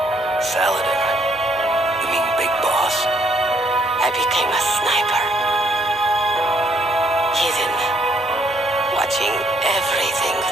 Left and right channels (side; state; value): both; normal; correlation 0.68